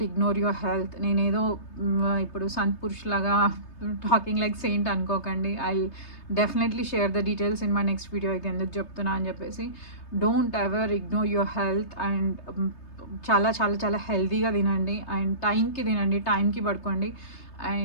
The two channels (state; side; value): late; right; 3.3 ms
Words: ignore your health. నేనేదో ఇప్పుడు సంత్ పురుష్ లాగా talking like Saint అనుకోకండి. I definitely share the details in my next video. ఇది ఎందుకు చెప్తున్నా అని చెప్పేసి, don't ever ignore your health. And చాలా చాలా చాలా హెల్తీగా తినండి అండ్ టైంకి తినండి, టైంకి పడుకోండి.